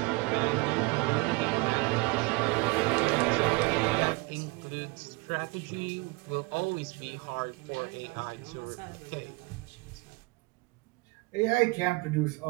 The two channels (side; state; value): left; quieter; 25.6 dB